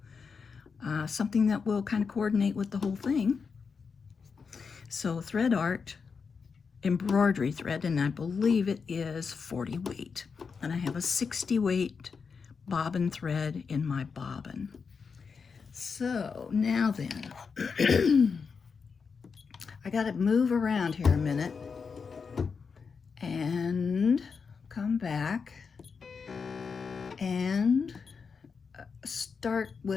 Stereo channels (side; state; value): right; quieter; 5.5 dB